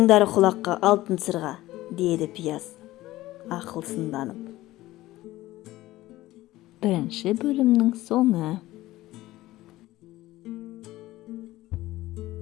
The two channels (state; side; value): quieter; right; 16.8 dB